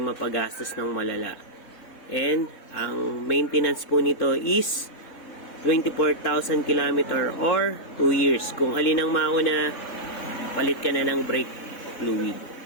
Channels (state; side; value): late; right; 3.6 ms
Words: mapagastos ng malala. And ang maintenance po nito is 24,000 km or 2 years. Kung alin ang mauna, palit ka na ng brake fluid.